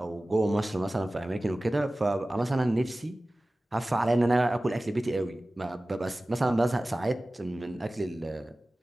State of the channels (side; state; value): both; normal; correlation 0.97